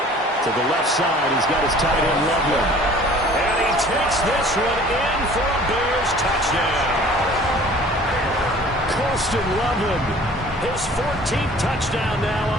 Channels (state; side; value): normal; both; correlation 0.49